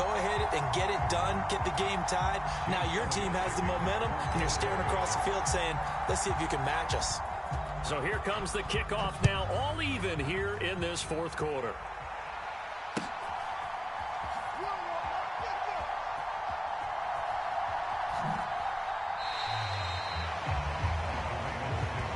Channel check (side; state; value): both; identical; correlation 1.00